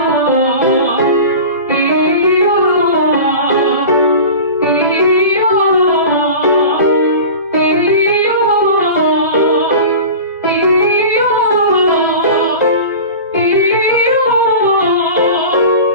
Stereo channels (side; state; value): both; inverted; correlation -0.34